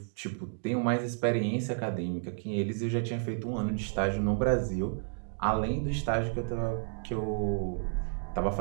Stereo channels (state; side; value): silent; left; digital silence